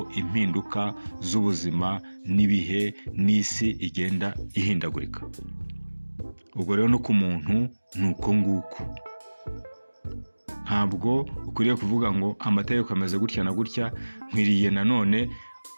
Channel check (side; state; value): both; inverted; correlation -1.00